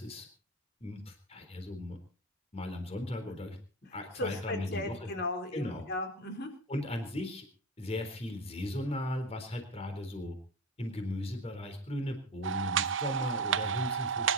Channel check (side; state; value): both; normal; correlation 0.23